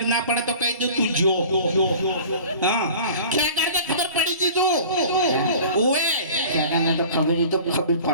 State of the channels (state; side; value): inverted; both; correlation -0.43